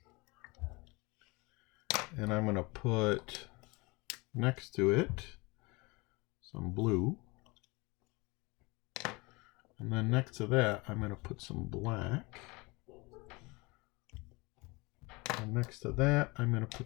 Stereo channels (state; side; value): quieter; right; 25.8 dB